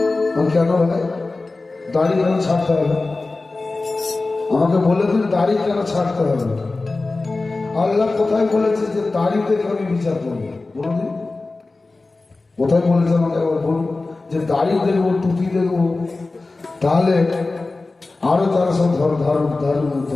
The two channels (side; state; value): right; quieter; 3.4 dB